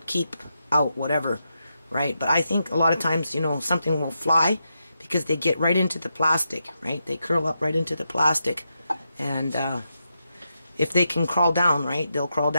keep out whatever, right? But I think a lot of times, you know, something will fly because they get right into the plastic, right? They curl up right into the plastic, and if they can crawl down, right, they'll crawl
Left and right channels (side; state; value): both; inverted; correlation -0.85